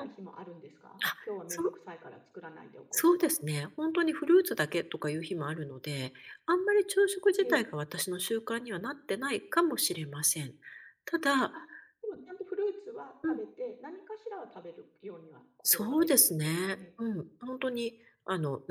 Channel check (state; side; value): identical; both; correlation 1.00